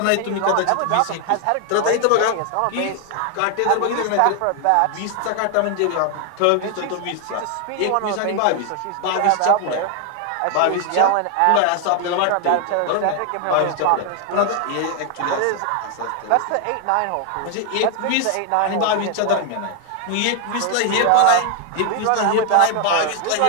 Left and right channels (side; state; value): both; different; correlation 0.00